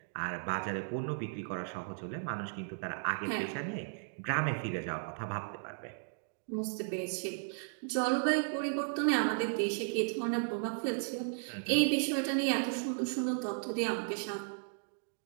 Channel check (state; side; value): silent; left; digital silence